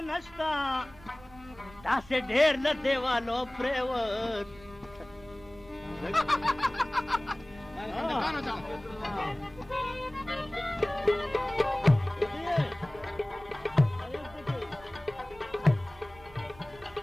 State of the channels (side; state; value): right; noise; rumble, 22 dB below the sound